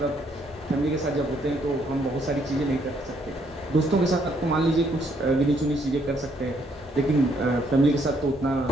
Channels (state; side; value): normal; both; correlation 0.70